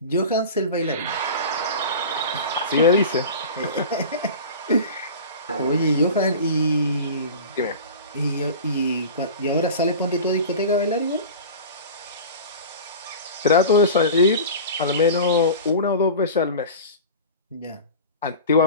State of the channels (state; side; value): inverted; both; correlation -0.34